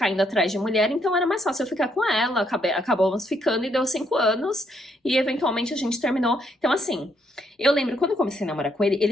indo atrás de mulher, então era mais fácil eu ficar com ela, acabamos ficando e deu 5 anos, e eventualmente a gente terminou. Então assim, eu lembro quando eu comecei a namorar com ele,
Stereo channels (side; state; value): both; normal; correlation 0.74